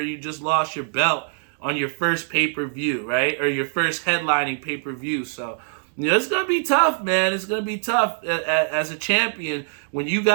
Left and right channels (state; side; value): silent; left; digital silence